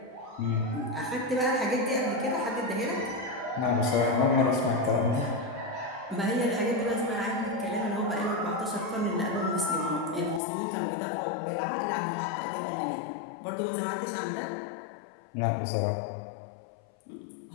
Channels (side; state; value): right; drops out; at 10.4 s